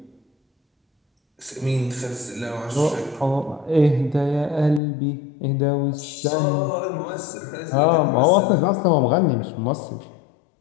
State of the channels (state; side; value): drops out; right; at 4.8 s